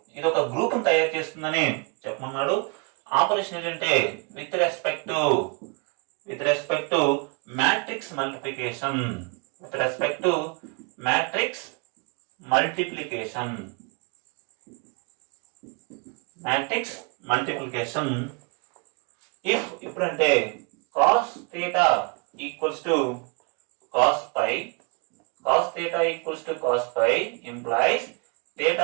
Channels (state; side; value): quieter; left; 31.9 dB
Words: ఇది ఒక గ్రూప్ తయారు చేస్తుందని చెప్పమన్నాడు. ఆపరేషన్ ఏంటంటే with respect to matrix multiplication. ఇప్పుడంటే cos theta equals to cos pi implies theta